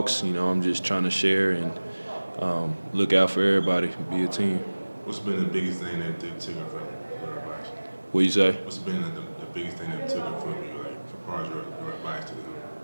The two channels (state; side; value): inverted; both; correlation -1.00